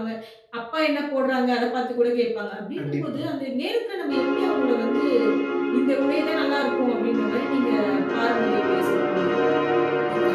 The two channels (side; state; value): both; identical; correlation 1.00